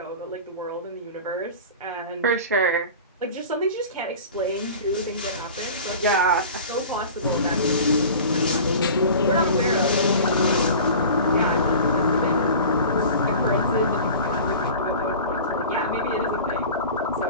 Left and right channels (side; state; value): both; inverted; correlation -0.38